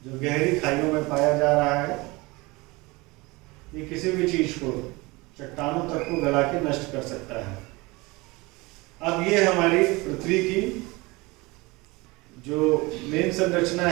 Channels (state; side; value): quieter; left; 23.7 dB